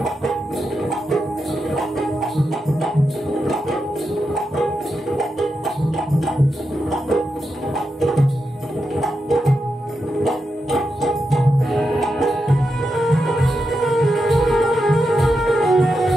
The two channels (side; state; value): both; normal; correlation 0.87